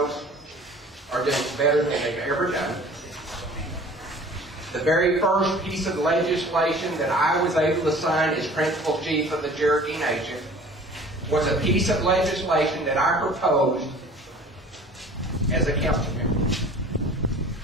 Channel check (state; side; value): normal; both; correlation 0.46